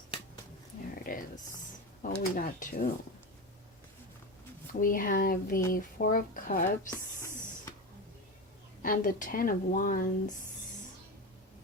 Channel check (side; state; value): both; normal; correlation 0.21